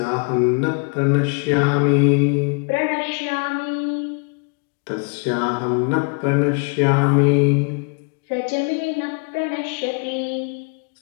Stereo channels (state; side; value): quieter; right; 36.3 dB